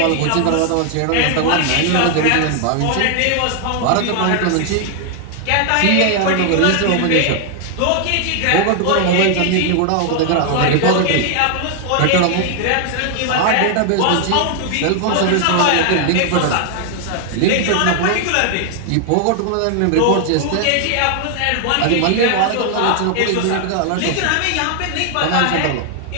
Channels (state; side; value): different; both; correlation 0.00